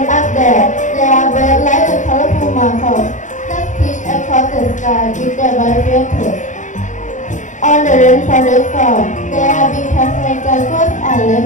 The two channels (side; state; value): right; late; 0.36 ms